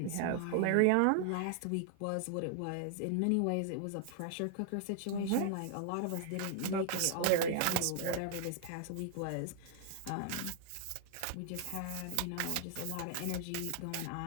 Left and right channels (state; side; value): different; both; correlation 0.00